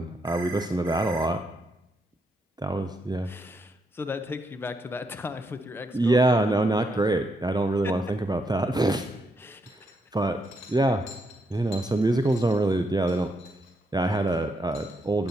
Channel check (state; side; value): normal; both; correlation 0.78